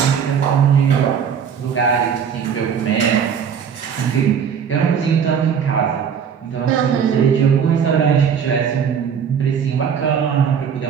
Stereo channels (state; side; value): quieter; left; 7.4 dB